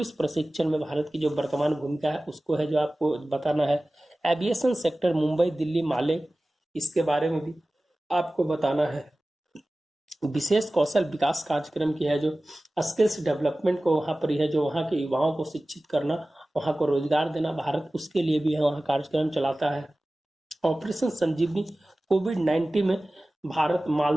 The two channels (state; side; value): normal; both; correlation 0.97